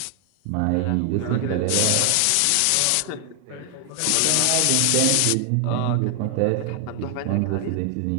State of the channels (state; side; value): different; both; correlation 0.00